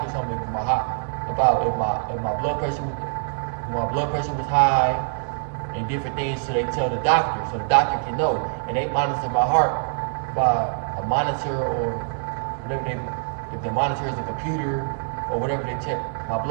something about if my blood pressure was high and different things, so they tell the doctor, so the doctor can know, and they monitor my heart by a monitor or whatever if the monitor is a computer or whatever they check my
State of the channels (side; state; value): left; silent; digital silence